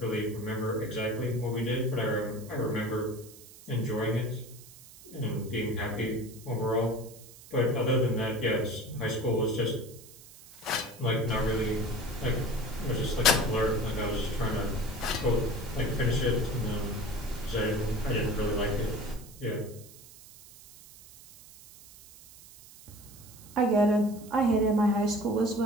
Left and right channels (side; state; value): right; noise; hiss, 20 dB below the sound